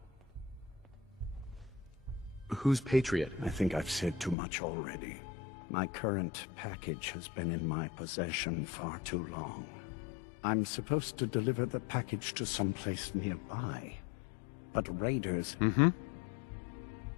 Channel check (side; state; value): right; drops out; at 4.4 s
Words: Who's Patriot? I think I've said too much already. My current package has been in my possession far too long. I'm supposed to deliver the package to someplace nearby, but raiders...